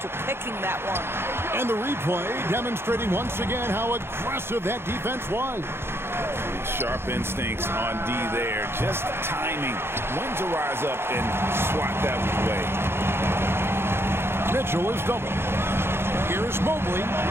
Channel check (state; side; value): late; left; 0.11 ms